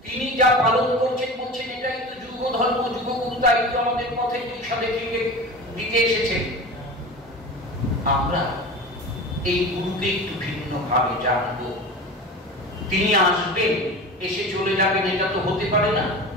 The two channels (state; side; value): normal; both; correlation 0.32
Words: তিনি যা পালন করছেন বলছেন এটাই তো যুগ ধর্ম, যুগগুরু। তাই তো আমাদের পথে দিশা দেখিয়ে দিতে এসেছেন। আমরা এই গুরুকে একটু ভিন্ন ভাবে জানবো। তিনি আসবেন, এসে চলে যাবেন, এটা তো হতে পারে না।